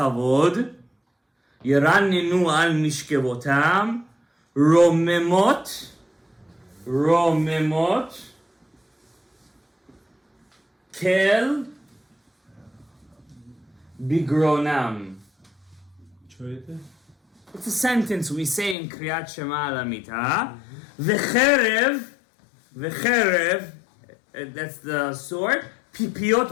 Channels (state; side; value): drops out; right; at 18.8 s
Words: Yerannenu al mishkevotam, Romemot, Kel, Bigronam. It's a sentence we say in Kriyat Shema al Amita. V'cherev, that's the sword,